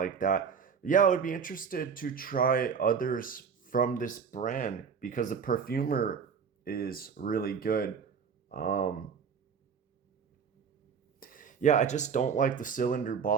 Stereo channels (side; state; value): left; quieter; 6.4 dB